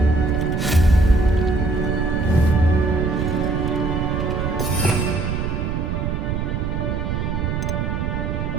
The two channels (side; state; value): right; noise; rumble, 1 dB below the sound